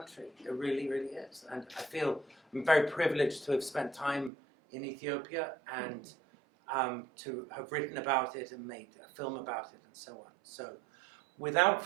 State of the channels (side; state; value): left; drops out; at 4.3 s